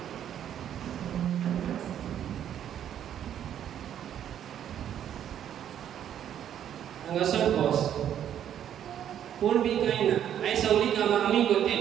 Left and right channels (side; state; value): left; quieter; 10.0 dB